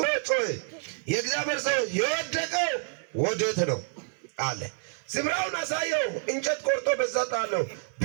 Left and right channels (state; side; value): silent; left; 59 dB below the other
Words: ጮኸ። የእግዚአብሔር ሰው የወደቀው ወዴት ነው አለ። ስፍራውን አሳየው። እንጨት ቆርጦ በዛ ጣለው።